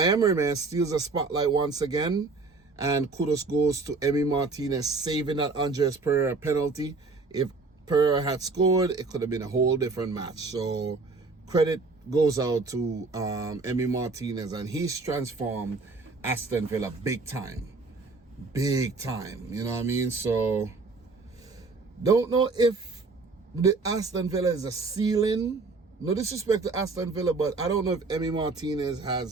man, steals a spotlight once again. And kudos goes to Emi Martinez saving that Andres Pereira penalty. If Pereira had scored, it could have been a whole different match. So credit goes out to Emi Martinez, and he's transformed Aston Villa big time. Big time, you know what I mean? So, don't know if the Aston Villa is a ceiling. No disrespect to Aston Villa, but I don't know if Emi Martinez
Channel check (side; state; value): left; quieter; 3.9 dB